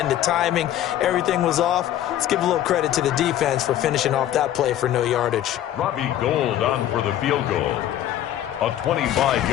the timing, everything was off. Let's give a little credit to the defense for finishing off that play for no yardage. Robbie Gould on for the field goal. A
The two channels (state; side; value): quieter; right; 12.1 dB